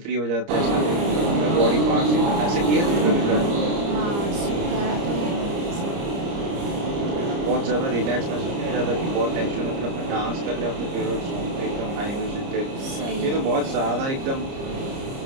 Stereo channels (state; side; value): late; left; 30 ms